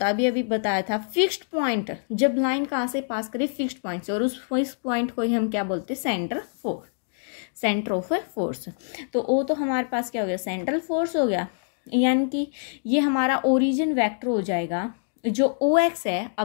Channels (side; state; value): right; silent; digital silence